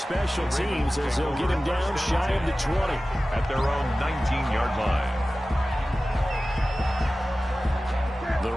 teams as they'll get him down shy of the 20. At their own 19-yard line. The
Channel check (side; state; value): both; normal; correlation 0.96